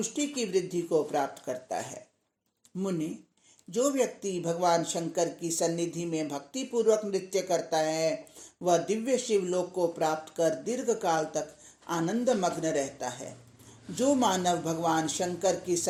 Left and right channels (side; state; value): both; identical; correlation 1.00